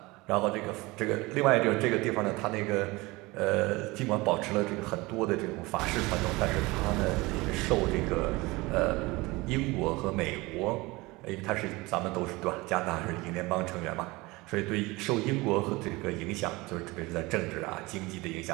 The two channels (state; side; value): quieter; left; 22.5 dB